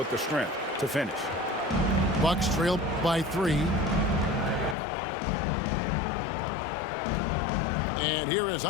the strength to finish. Bucks trail by 3. And here is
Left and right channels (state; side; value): drops out; right; at 4.8 s